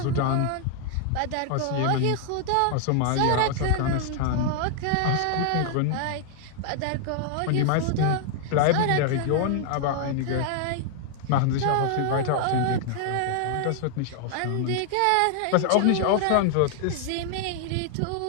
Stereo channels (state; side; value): different; both; correlation 0.00